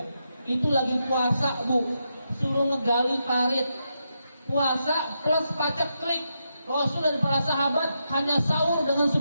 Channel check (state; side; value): inverted; both; correlation -0.84